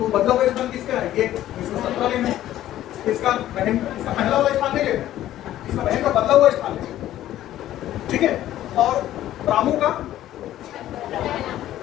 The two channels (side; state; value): right; quieter; 13.2 dB